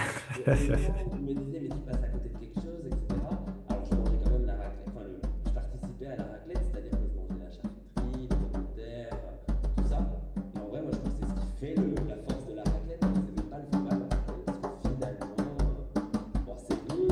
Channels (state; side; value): identical; both; correlation 1.00